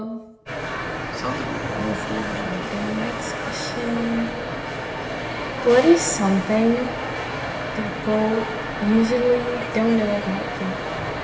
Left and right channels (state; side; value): identical; both; correlation 1.00